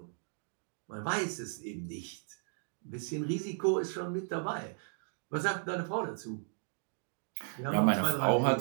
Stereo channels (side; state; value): left; silent; 54 dB below the other